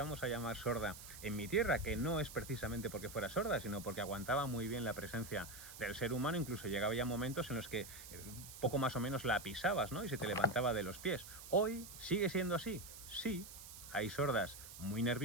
a llamar sorda en mi tierra, que no es precisamente porque fuera sorda, sino porque aguantaba muy bien la presencia del ser humano. Incluso llegaba ya momentos en los que poco más o menos la pisabas, ¿no? Y se te levantaba de los pies. Hoy sigue siendo así. Sí, hay sordas muy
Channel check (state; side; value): noise; right; hiss, 13 dB below the sound